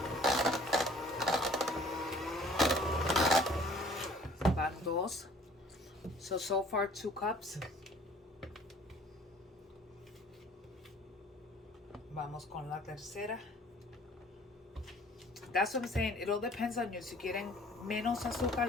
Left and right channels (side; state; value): both; normal; correlation 0.53